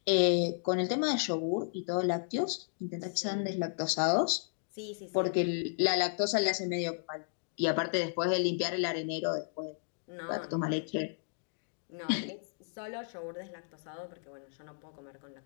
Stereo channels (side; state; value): right; silent; digital silence